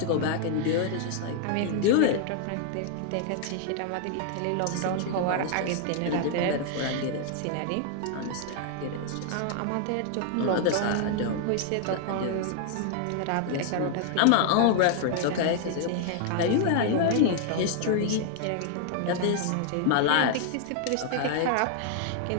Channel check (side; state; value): both; different; correlation 0.00